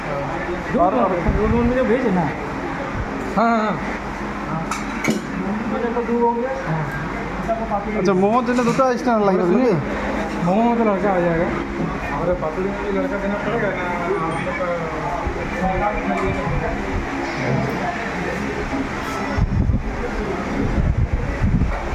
दूध में जो भेजे ना हाँ हाँ अच्छा मोमोर जন্য দুটো স্ট্যান্ড লাগবে নাকি मोमो में तो लड़का आ जाएगा और पातुरी में भी लड़का देना पड़ेगा ना हम लोग का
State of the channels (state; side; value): identical; both; correlation 1.00